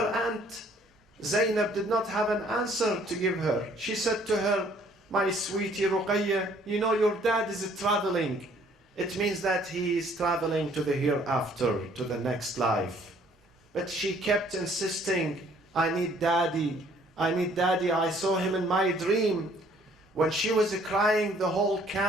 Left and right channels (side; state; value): both; normal; correlation 0.60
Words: aunt Zainab did not have an answer to give her. She said to her, my sweetie Ruqayya, you know your dad is traveling. It means that he is traveling to the hereafter, to the next life. But she kept insisting, I need daddy, I need daddy, I saw him in my dream. When she was crying, the whole